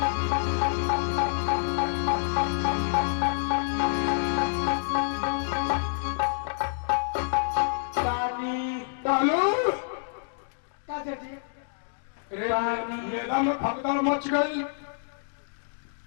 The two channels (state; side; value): silent; right; digital silence